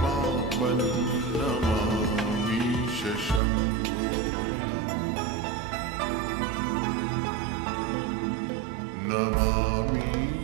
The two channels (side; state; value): left; drops out; at 3.4 s